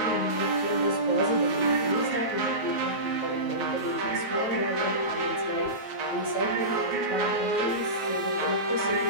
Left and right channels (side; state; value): right; late; 9.2 ms